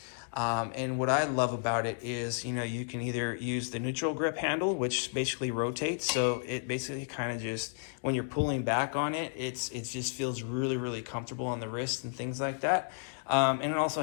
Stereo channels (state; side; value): silent; right; digital silence